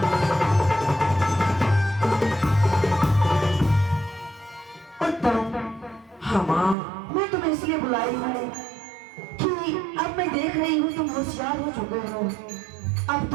उत्तम हाँ माँ, मैं तुम्हें इसलिए बुलाई हूँ कि अब मैं देख रही हूँ तुम होशियार हो चुके हो। अब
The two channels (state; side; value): drops out; left; at 6.8 s